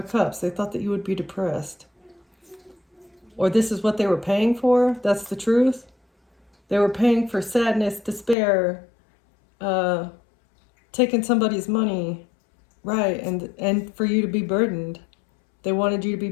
Cups. They thought that you would be depressed. Or this is what they were paying for. That's the truth. They were paying for sadness, despair, taking somebody's money. Right, and for you to be burdened. They wanted you to be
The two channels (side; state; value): right; drops out; at 8.3 s